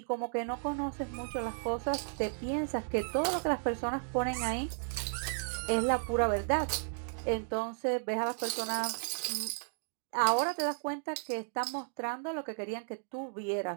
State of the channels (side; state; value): left; silent; digital silence